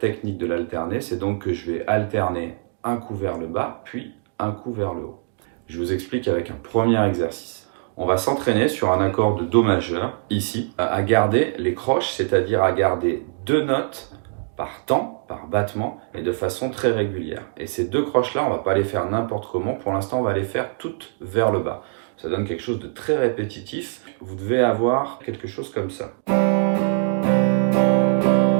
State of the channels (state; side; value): silent; left; digital silence